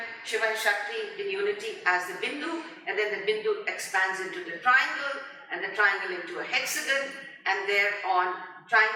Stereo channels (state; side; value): identical; both; correlation 1.00